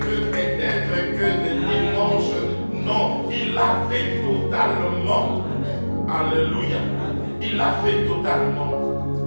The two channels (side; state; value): both; inverted; correlation -1.00